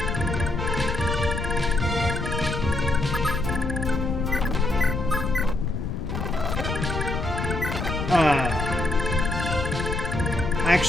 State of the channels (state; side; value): noise; left; rumble, 3 dB below the sound